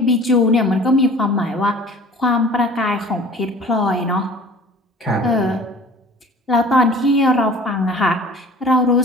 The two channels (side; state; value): both; normal; correlation 0.46